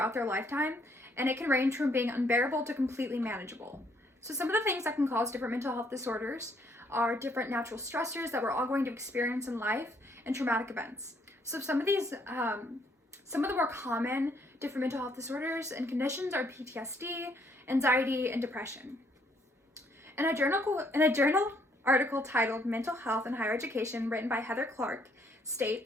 their lifetime, and it can range from being unbearable to completely manageable. So some of the things that can cause different mental health disorders are different natural stressors that we're all going to experience in life and traumatic events. So some of the more common different mental health disorders and conditions are PTSD, anxiety, and depression. In a journal article titled Mental Health in Higher Education, written by Heather Clark,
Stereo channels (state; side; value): normal; both; correlation 0.68